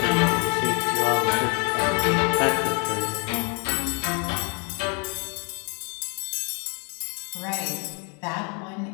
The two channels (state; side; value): quieter; right; 35.6 dB